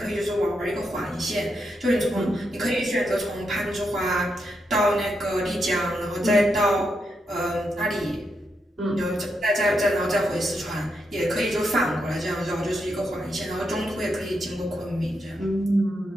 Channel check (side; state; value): both; normal; correlation 0.83